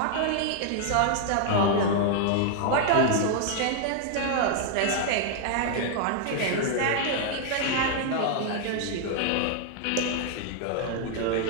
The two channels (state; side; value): different; both; correlation 0.00